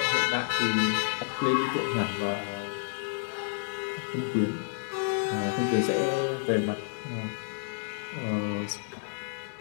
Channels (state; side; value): silent; right; digital silence